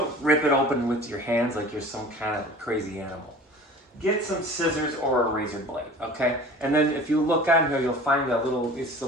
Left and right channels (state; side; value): normal; both; correlation 0.42